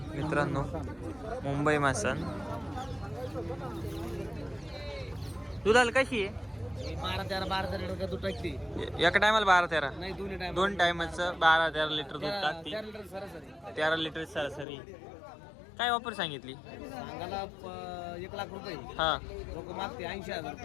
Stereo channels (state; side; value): drops out; right; at 14.7 s